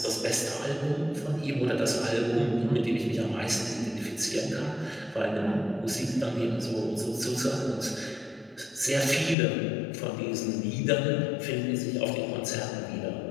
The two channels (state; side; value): drops out; right; at 9.3 s